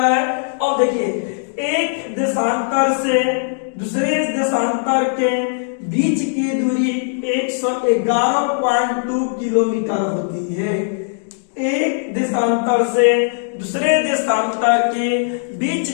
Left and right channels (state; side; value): silent; right; digital silence